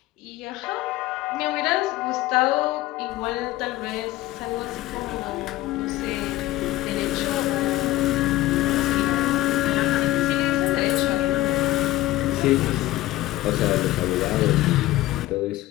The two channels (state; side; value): quieter; right; 16.6 dB